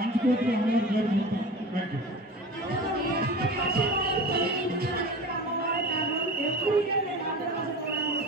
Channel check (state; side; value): normal; both; correlation 0.34